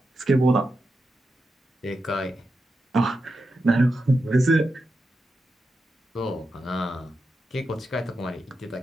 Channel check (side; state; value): both; normal; correlation 0.88